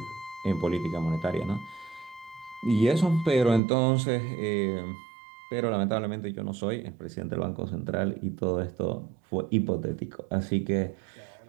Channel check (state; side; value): drops out; left; at 3.6 s